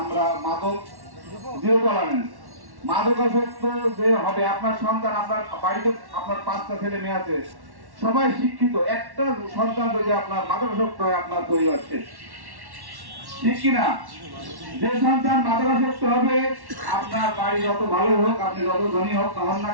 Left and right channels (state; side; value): late; left; 1.1 ms